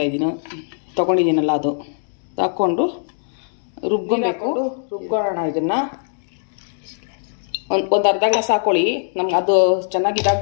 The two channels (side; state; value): right; silent; digital silence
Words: ತೊಗೊಂಡಿದ್ದೀನಲ್ಲ, ಅದು ಹಾಕ್ಕೊಂಡು ರುಬ್ಕೊಳ್ಳೋಣ. ಇದನ್ನು ಒಂದು ಅರ್ಧ ಗ್ಲಾಸ್ ಹಾಕ್ಕೊಳ್ಳಿ. ನಮ್ಗೆ ಅದು ಚೆನ್ನಾಗಿ